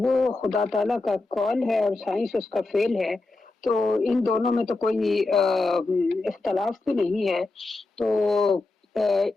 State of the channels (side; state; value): right; quieter; 3.2 dB